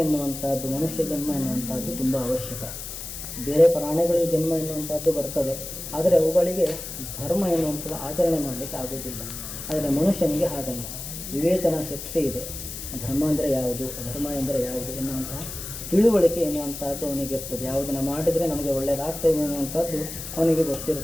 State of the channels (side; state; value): left; noise; hiss, 9 dB below the sound